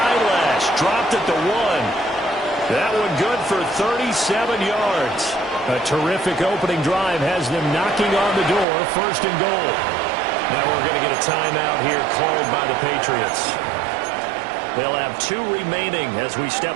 Dropped at the 1. That one good for 37 yards. A terrific opening drive has them knocking on the door, 1st and goal. Now we're going to get a timeout here called by the Patriots. They'll have 2 remaining as we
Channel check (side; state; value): left; drops out; at 8.7 s